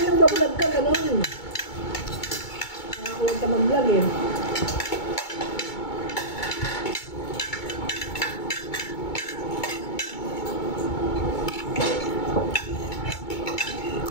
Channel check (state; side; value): late; right; 2.2 ms